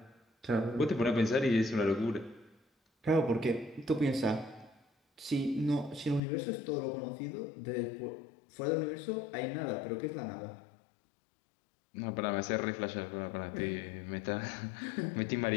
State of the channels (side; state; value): right; drops out; at 6.2 s